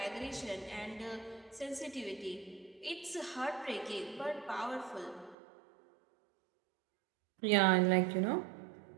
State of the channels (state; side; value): drops out; left; at 5.4 s